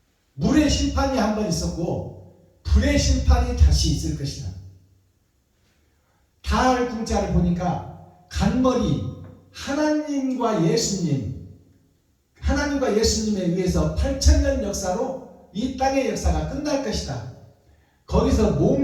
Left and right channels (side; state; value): both; identical; correlation 1.00